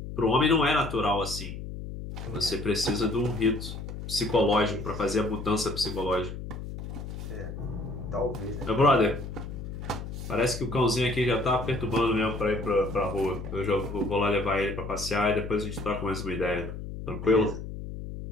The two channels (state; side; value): noise; left; hum, 8 dB below the sound